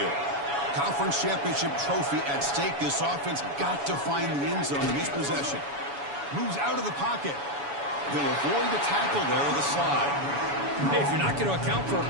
Conference championship trophy at stake. This offense got to find the end zone in this possession. Moves out of the pocket. He'll avoid the tackle there with a slide. Hey, if you're not going to account for a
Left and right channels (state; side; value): late; left; 7.1 ms